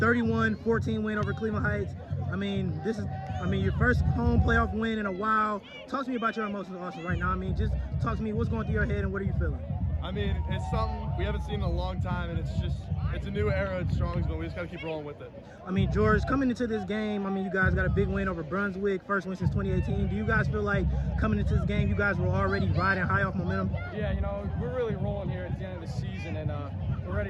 win over Cleveland Heights. I mean, this is, your first home playoff win in a while. Talk to me about your emotions, Austin, right now. I mean, just talk to me, what's going through your head and what are you feeling? I mean, it's something we haven't seen in a long time, and it's a new era at Strongsville. We just got to keep rolling with it. I mean, George, coming into this game, I mean, you guys got a big win over Brunswick, first win since 2018. Do you guys feel like coming into this game, you guys were already riding high off momentum? Yeah, you know, we're really rolling here at the end of the season, and we're ready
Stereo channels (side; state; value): both; identical; correlation 1.00